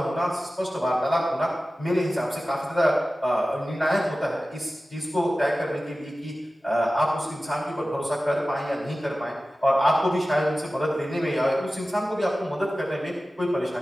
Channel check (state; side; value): normal; both; correlation 0.95